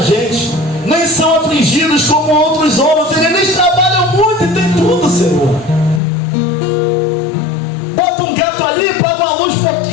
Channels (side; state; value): right; drops out; at 6.0 s